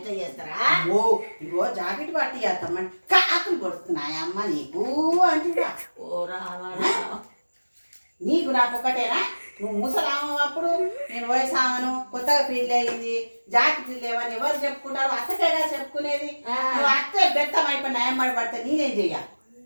చేస్తారా? ఓ ఇగో జాకెట్ పట్టి చేస్తామని కాకులు కొడుతున్నాయమ్మ నీకు అంటున్నా. ఓ రావా, నీకు నాకు ఒకటేనా? నువ్వు ముసలాము అప్పుడు, నేను వయసామను, కొత్తగా పెళ్ళి అయింది, జాకెట్లు లేవని ఎవరు చెప్పుకుంటారు? అత్తకేగా చెప్పుకునేది. నువ్వు అత్తే బెత్తం అయిపోయిన ఏమడి పడితే నేనేం చెయ్యాలి?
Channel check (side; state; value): both; inverted; correlation -1.00